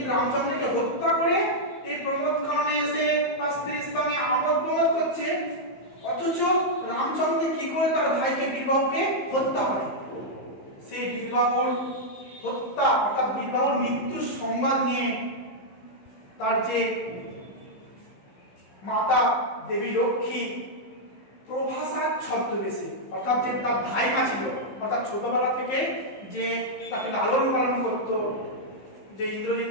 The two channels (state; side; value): late; right; 15 ms